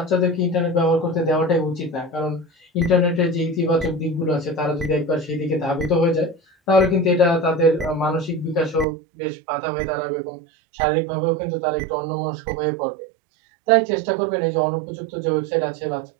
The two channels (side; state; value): left; drops out; at 8.8 s